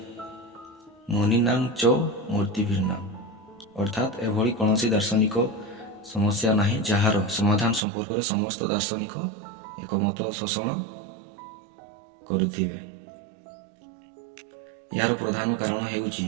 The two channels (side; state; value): left; drops out; at 7.8 s